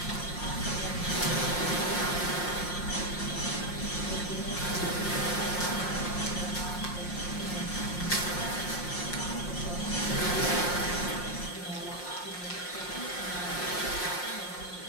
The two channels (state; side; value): late; right; 5.6 ms